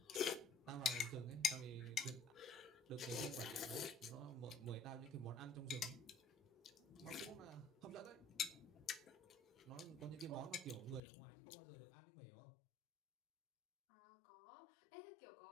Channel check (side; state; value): right; drops out; at 11.0 s